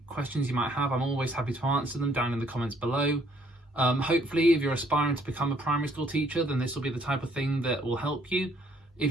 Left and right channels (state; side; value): normal; both; correlation 0.65